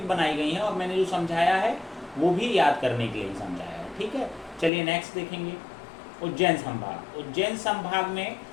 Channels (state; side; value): drops out; right; at 4.7 s